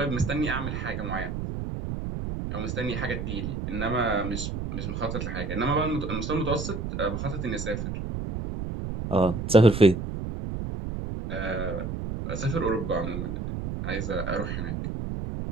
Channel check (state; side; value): noise; right; rumble, 4 dB below the sound